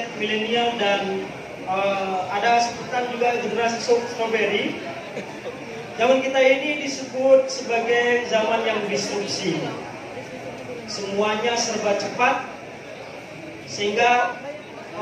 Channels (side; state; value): both; identical; correlation 1.00